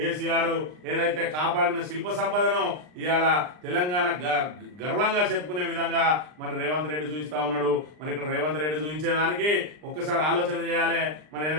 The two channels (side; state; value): left; late; 39 ms